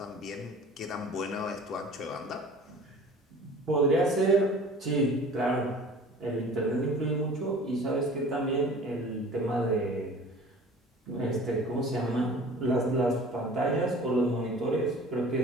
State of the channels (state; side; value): normal; both; correlation 0.45